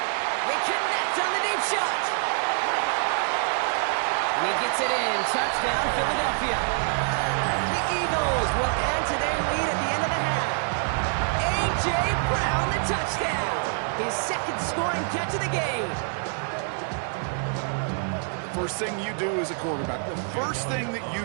They connect on the deep shot. And he gets it in. Touchdown, Philadelphia. The Eagles will add to their lead at the end of the half. A.J. Brown, the touchdown. His 2nd scoring catch of the game. First thing you do as a quarterback, the first thing that you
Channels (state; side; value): silent; left; 58 dB below the other